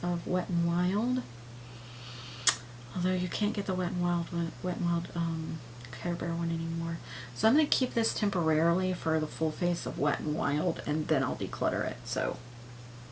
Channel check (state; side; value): identical; both; correlation 1.00